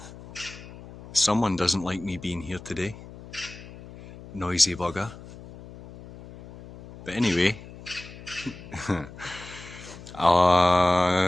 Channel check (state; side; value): noise; left; hum, 17 dB below the sound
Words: Someone doesn't like me being here today. Noisy bugger. But anyway,